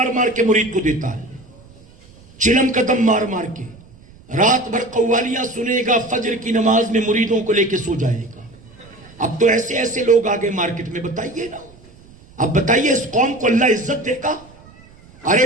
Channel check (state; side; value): noise; right; rumble, 24 dB below the sound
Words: مار کے مرید کو دیتا ہے, چلم کا دم مار مار کے, رات بھر قوالیاں سنے گا, فجر کی نماز میں مریدوں کو لے کے سو جائے گا. اب تو ایسے ایسے لوگ آگے مارکیٹ میں, بتائیے نا, اب بتائیے اس قوم کو اللہ عزت دے گا؟